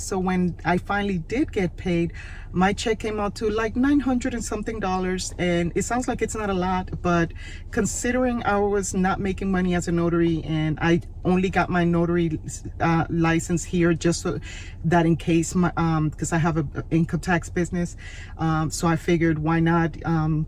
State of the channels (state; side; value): identical; both; correlation 1.00